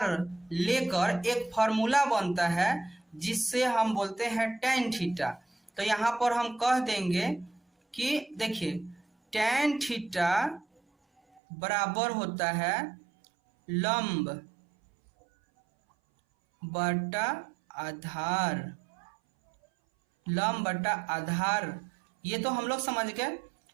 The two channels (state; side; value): drops out; left; at 11.4 s